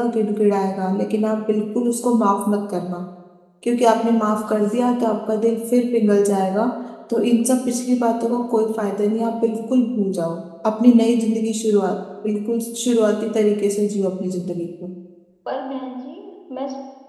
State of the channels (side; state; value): both; identical; correlation 1.00